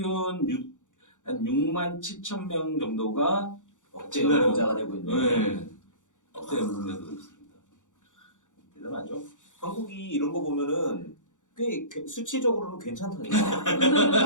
한 6만 7천 명 정도가 억제 연봉자가 되고 있네. 네. 억제 연봉자도 있습니다. 대단하죠. 한국이 이런 거 보면은 꽤 수치적으로는 괜찮다니까.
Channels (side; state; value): right; late; 0.86 ms